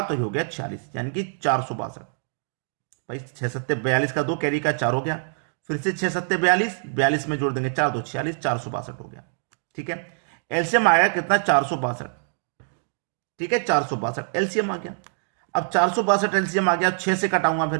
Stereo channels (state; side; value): silent; left; digital silence